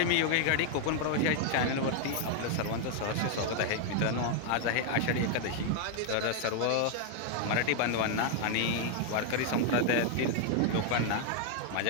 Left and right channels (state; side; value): different; both; correlation 0.00